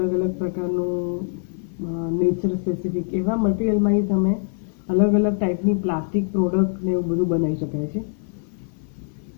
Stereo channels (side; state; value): right; silent; 58 dB below the other